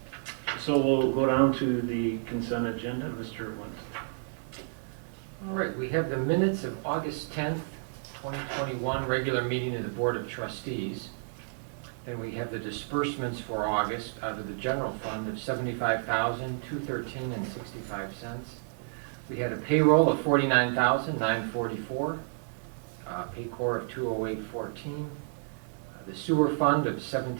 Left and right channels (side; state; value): left; silent; 57 dB below the other